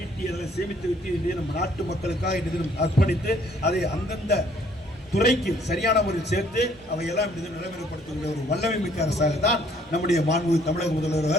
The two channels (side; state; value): both; normal; correlation 0.62